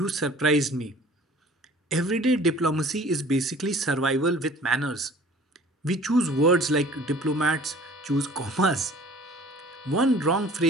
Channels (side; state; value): both; normal; correlation 0.49